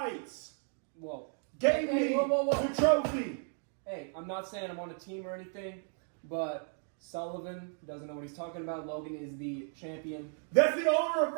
Whoa. gave Hey, me whoa. the trophy. Hey, I'm not saying I'm on a team or anything, but Sullivan doesn't know what he's talking about. Logan is the champion. That's the owner of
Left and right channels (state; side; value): silent; left; 55 dB below the other